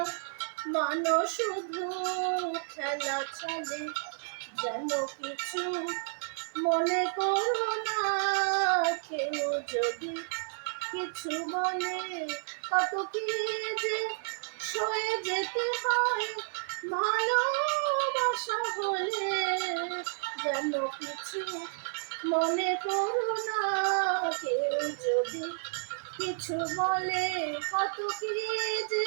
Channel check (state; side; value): silent; left; 57 dB below the other